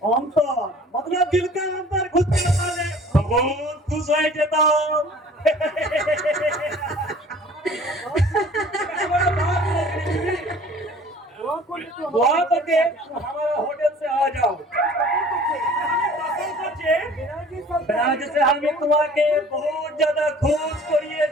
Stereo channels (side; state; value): both; normal; correlation 0.49